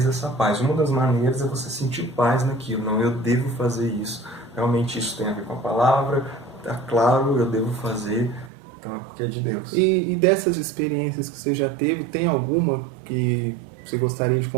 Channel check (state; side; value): drops out; left; at 8.5 s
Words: dessa paz. Uma das maneiras é você sentir paz naquilo. Não, eu devo fazer isso. Realmente isso tem a ver com a palavra. Está claro, eu devo fazer. Então é porque é de Deus. E dessas experiências que você já teve, tem alguma que você gostaria de